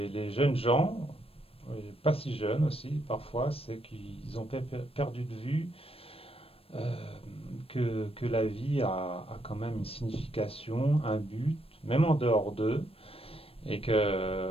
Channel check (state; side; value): late; right; 0.28 ms